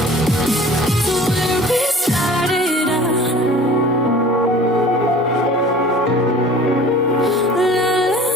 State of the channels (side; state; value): both; normal; correlation 0.44